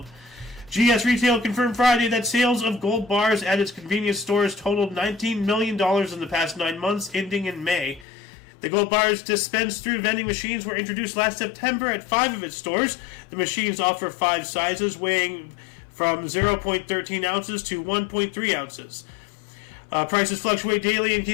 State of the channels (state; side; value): drops out; right; at 8.1 s